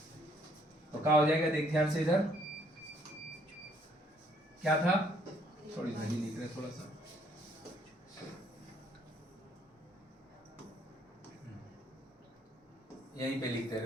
तो क्या हो जाएगा, देख ध्यान से इधर क्या था, थोड़ी घड़ी लिख रहे थोड़ा सा, यहीं पे लिखते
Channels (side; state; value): both; normal; correlation 0.65